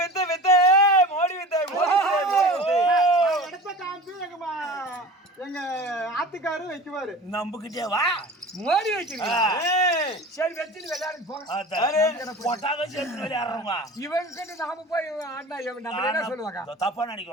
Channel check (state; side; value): normal; both; correlation 0.36